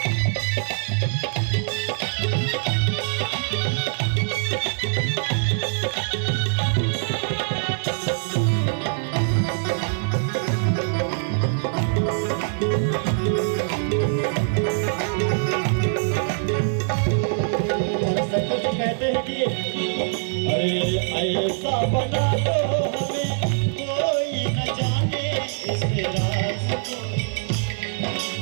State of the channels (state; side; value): silent; left; digital silence